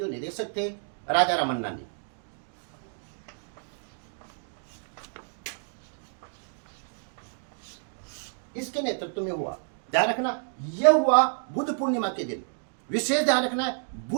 निदेशक थे, राजा रामन्ना ने। इसके नेतृत्व में हुआ। ध्यान रखना, यह हुआ बुद्ध पूर्णिमा के दिन। विशेष ध्यान रखना है,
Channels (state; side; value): silent; left; 58 dB below the other